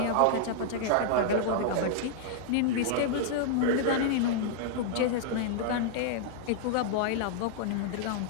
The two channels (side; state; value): both; different; correlation -0.01